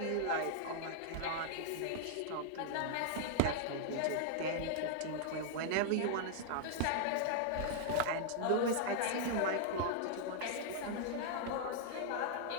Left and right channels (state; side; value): different; both; correlation -0.01